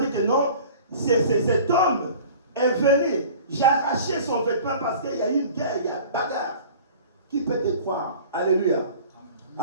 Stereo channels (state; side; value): inverted; both; correlation -0.44